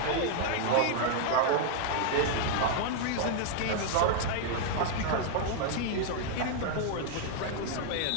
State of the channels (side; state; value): both; different; correlation 0.00